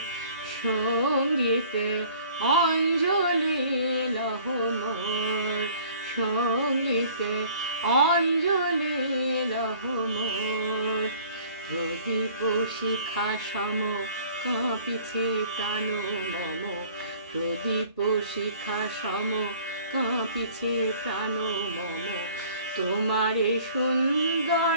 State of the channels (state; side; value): inverted; both; correlation -0.52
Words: সঙ্গীতে, অঞ্জলি লহ মোর সঙ্গীতে, অঞ্জলি লহ মোর। প্রদীপ শিখা সম কাঁপিছে প্রাণ মম, প্রদীপ শিখা সম কাঁপিছে প্রাণ মম। তোমারে